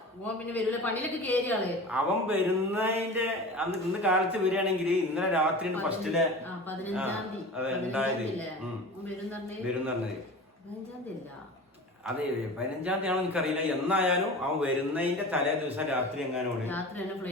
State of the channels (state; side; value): normal; both; correlation 0.35